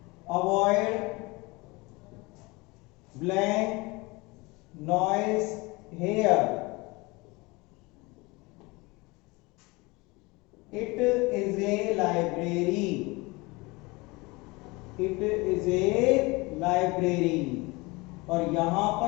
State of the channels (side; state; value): right; quieter; 24.6 dB